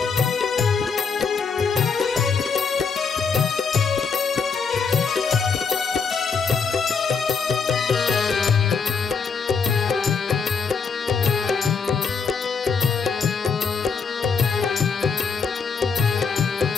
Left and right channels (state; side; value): quieter; right; 5.5 dB